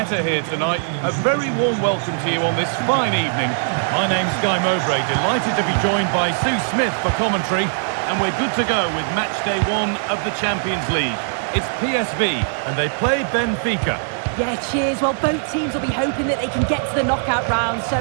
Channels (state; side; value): silent; left; digital silence